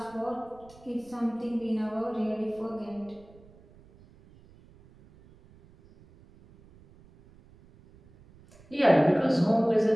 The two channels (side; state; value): right; noise; rumble, 26 dB below the sound